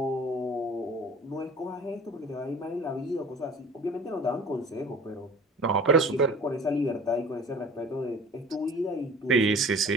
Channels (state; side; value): normal; both; correlation 0.45